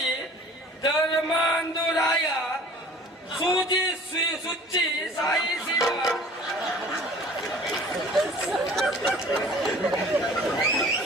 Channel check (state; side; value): normal; both; correlation 0.47